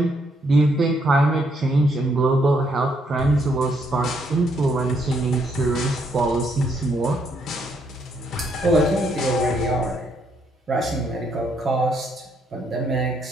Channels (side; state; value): both; normal; correlation 0.73